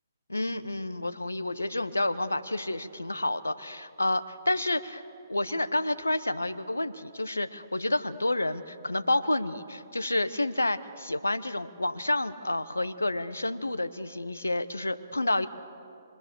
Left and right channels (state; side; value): inverted; both; correlation -0.96